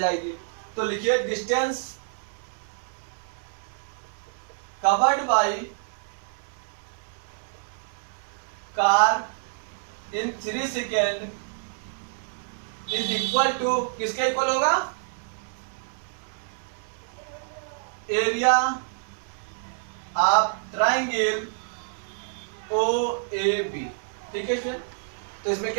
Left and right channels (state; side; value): silent; left; 60 dB below the other